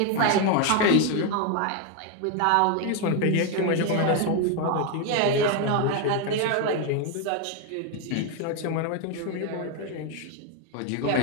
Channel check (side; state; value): both; different; correlation 0.01